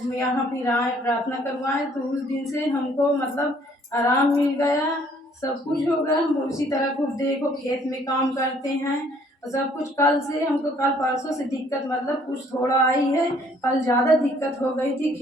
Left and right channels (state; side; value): normal; both; correlation 0.61